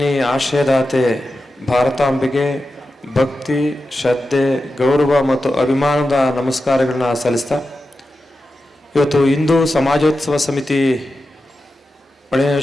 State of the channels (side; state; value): both; normal; correlation 0.91